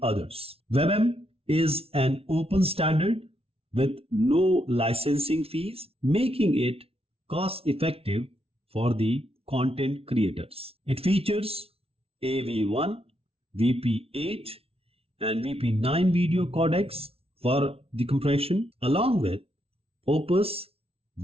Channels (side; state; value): left; late; 0.28 ms